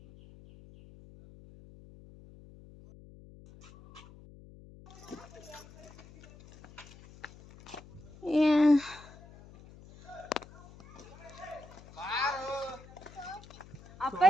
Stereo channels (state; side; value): noise; left; hum, 20 dB below the sound